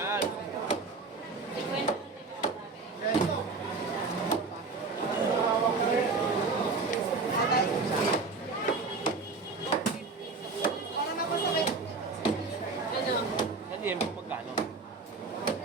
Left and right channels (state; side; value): quieter; left; 4.1 dB